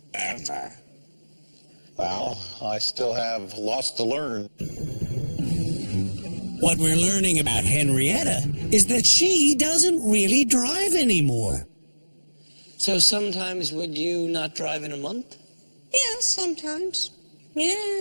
ever? Well, I still have lots to learn. What we're learning about Henrietta is that she doesn't really drive anymore. So sometimes would you not drive in a month? Yeah, sometimes.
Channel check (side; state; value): both; inverted; correlation -1.00